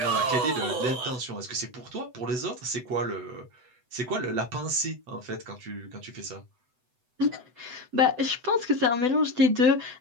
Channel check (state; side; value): late; left; 7.9 ms